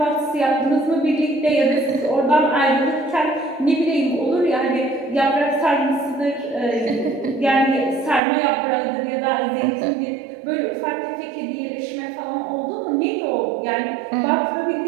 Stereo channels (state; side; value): drops out; left; at 8.2 s